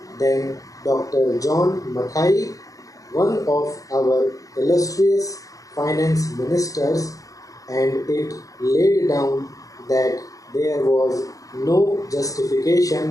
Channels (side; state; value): right; late; 0.17 ms